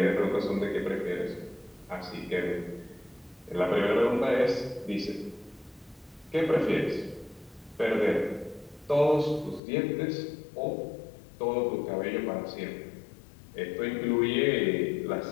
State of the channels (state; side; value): drops out; right; at 9.6 s